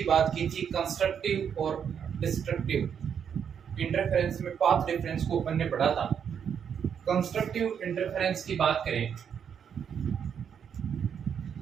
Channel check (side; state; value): left; quieter; 7.8 dB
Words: बात की थी, कंस्ट्रक्टिव और डिस्ट्रक्टिव। इंटरफेरेंस में पाथ डिफरेंस को अपन ने पढ़ा था। कंस्ट्रक्टिव इंटरफेरेंस की बात करें